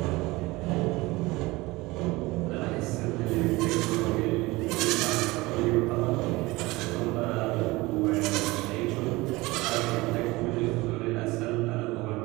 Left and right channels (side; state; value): left; quieter; 21.5 dB